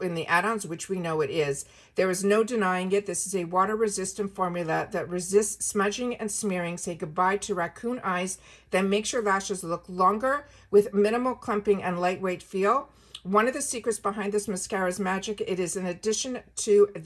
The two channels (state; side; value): identical; both; correlation 1.00